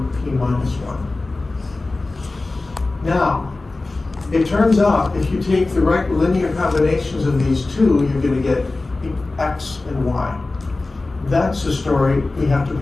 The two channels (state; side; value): quieter; right; 3.3 dB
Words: p minus 1. Now, it turns out if you take the right linear combinations of these two, you're going to get x and y. That's a story we have to